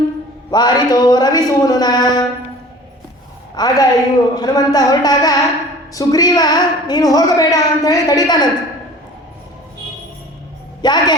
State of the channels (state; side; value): normal; both; correlation 0.44